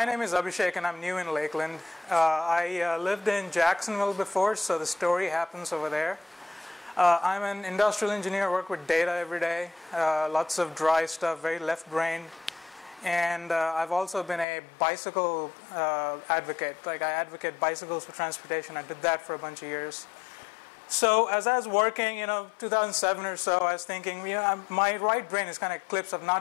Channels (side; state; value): right; drops out; at 14.5 s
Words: name is Abhishek and I'm new in Lakeland. I lived in Jacksonville before, so the story happens over there. I'm an industrial engineer, work with data every day, lots of dry stuff, very left-brained. And I've also been a bicycle advocate. Like, I advocate bicycles for transportation. I did that for a bunch of years. So as I was working, 2007 or so, I was thinking, my right brain is kind of clips of